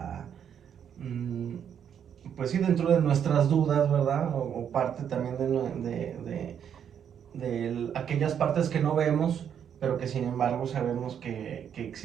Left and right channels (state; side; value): quieter; left; 8.5 dB